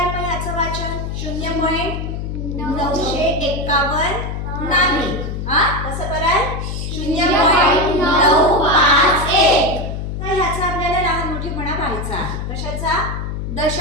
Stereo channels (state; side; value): noise; left; hum, 4 dB below the sound